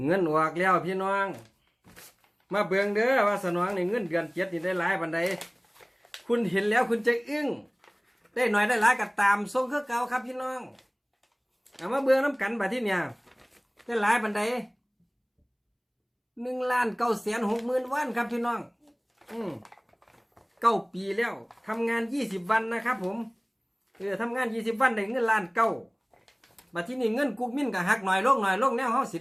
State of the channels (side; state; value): both; identical; correlation 1.00